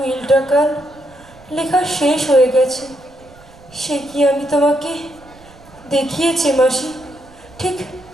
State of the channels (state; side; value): noise; right; rumble, 24 dB below the sound